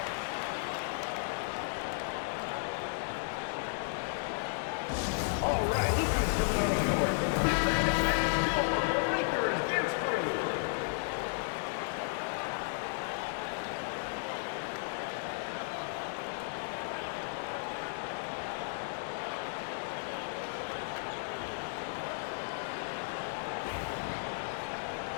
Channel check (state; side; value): silent; right; digital silence